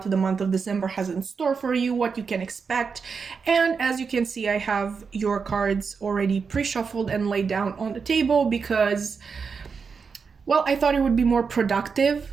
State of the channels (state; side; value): quieter; left; 5.5 dB